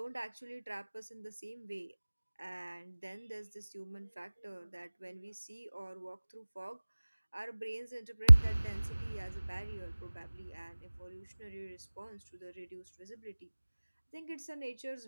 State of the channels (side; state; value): both; inverted; correlation -1.00